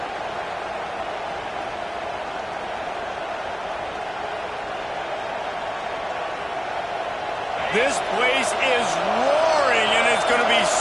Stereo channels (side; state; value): both; identical; correlation 1.00